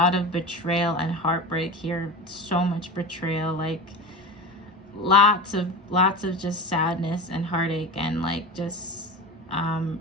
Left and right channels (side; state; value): both; normal; correlation 0.28